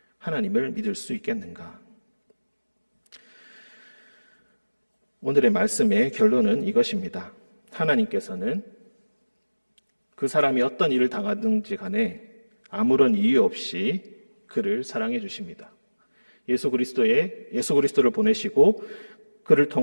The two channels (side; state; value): both; inverted; correlation -1.00